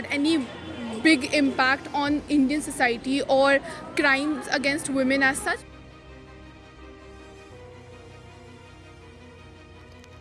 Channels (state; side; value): identical; both; correlation 1.00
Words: any big impact on Indian society or crimes against women as such.